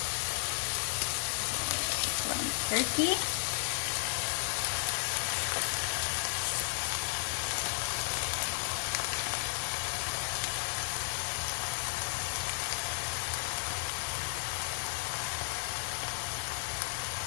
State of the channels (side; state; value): right; silent; digital silence